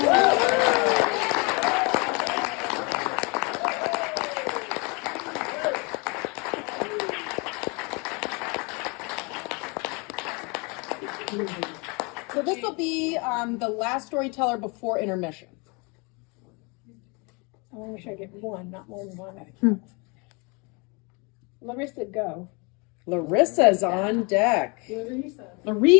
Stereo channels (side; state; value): right; quieter; 30.5 dB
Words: So this will be the last storyteller before intermission. I want to make sure I get one, not more than one. Larissa, go. Larissa's on deck.